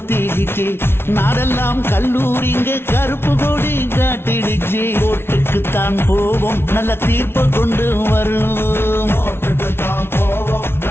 நாடெல்லாம் கல்லூரிங்க கருப்பு கொடி காட்டிடுச்சு கோர்ட்டுக்குத்தான் போவோம் நல்ல தீர்ப்பை கொண்டு வருவோம்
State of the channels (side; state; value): right; late; 0.12 ms